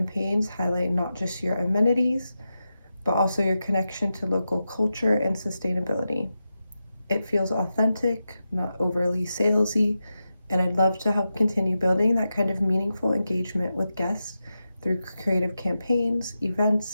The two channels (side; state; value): both; inverted; correlation -0.90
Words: highlight not just your amenities, but also your connection to local culture and sustainability. It feels authentic, not overly salesy, and I'd love to help continue building that kind of meaningful engagement with guests through creative campaigns,